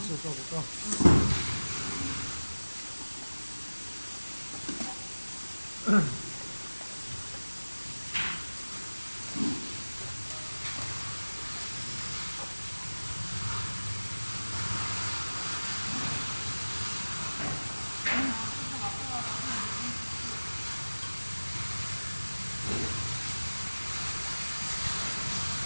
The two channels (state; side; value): inverted; both; correlation -1.00